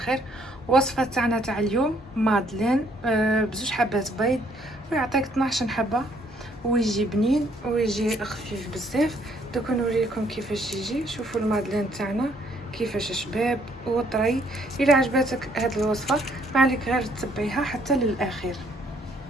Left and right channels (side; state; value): both; normal; correlation 0.66